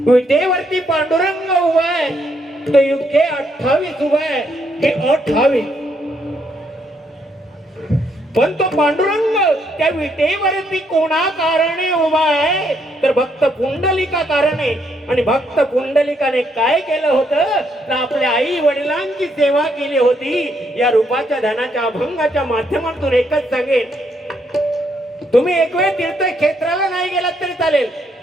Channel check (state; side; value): normal; both; correlation 0.74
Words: विटेवरती पांडुरंग उभा आहे, तो युगे 28 उभा आहे, हे 28. पण तो पांडुरंग त्या विटेवरती कोणा कारणे उभा आहे, तर भक्त पुंडलिका कारणे. आणि भक्त पुंडलिकाने काय केलं होतं, तर आपल्या आई वडिलांची सेवा केली होती. या रूपाच्या ध्यानाच्या अभंगाच्या माध्यमातून एकच सांगेन, तुम्ही एक वेळ तीर्थक्षेत्राला नाही गेलात तरी चालेल,